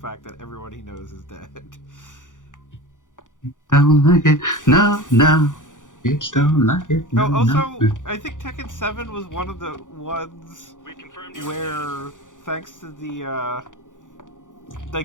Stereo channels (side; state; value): right; late; 0.87 ms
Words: that everyone he knows is dead. Don't like it. No. It's don't like it. No, Oh, also, no. I think Tekken 7 was one of the ones where, thanks to the,